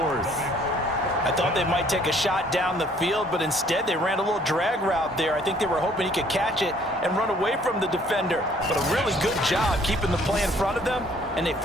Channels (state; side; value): normal; both; correlation 0.60